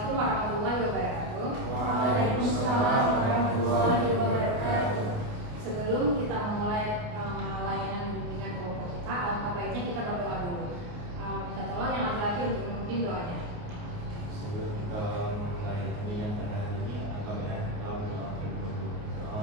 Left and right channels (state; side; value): late; left; 28 ms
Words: warahmatullahi wabarakatuh. Waalaikumsalam warahmatullahi wabarakatuh. Sebelum kita memulai layanan bimbingan kelompok kita, alangkah baiknya kita berdoa dulu. Minta tolong yang laki-laki untuk memimpin doanya. Sebelum kita memulai bimbingan pada hari ini, alangkah baiknya kita berdoa dulu. Doa